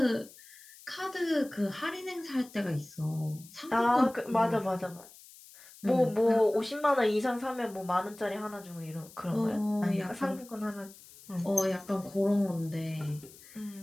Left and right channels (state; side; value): noise; left; hiss, 21 dB below the sound